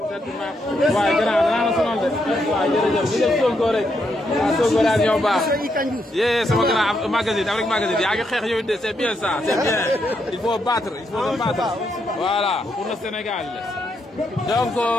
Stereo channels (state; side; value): normal; both; correlation 0.79